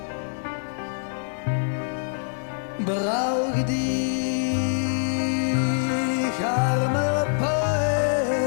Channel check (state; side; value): silent; right; digital silence